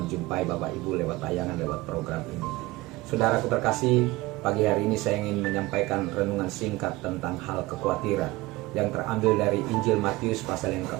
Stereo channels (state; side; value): quieter; left; 20.3 dB